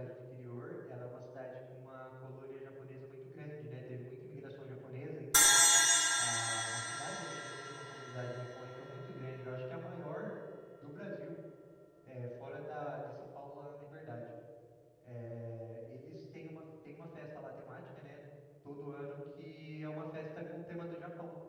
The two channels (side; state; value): both; identical; correlation 1.00